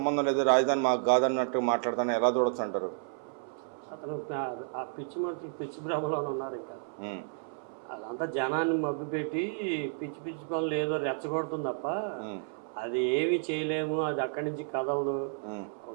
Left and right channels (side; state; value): left; silent; 57 dB below the other